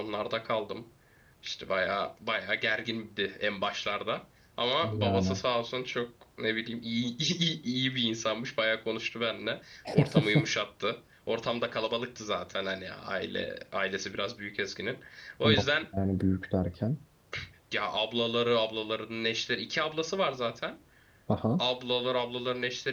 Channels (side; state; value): both; identical; correlation 1.00